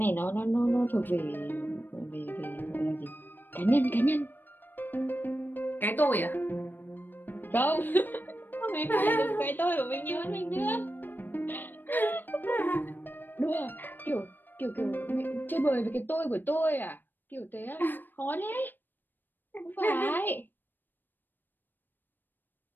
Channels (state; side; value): late; right; 0.092 ms